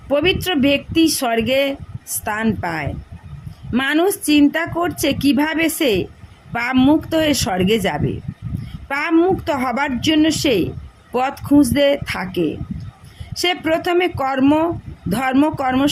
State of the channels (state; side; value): identical; both; correlation 1.00